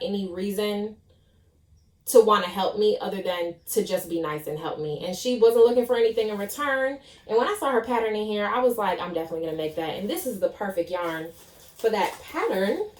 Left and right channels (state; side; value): identical; both; correlation 1.00